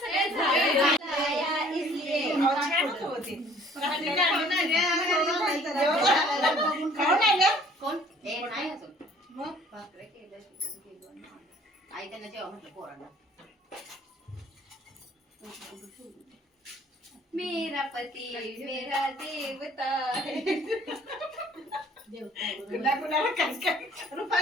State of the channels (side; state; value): both; normal; correlation 0.55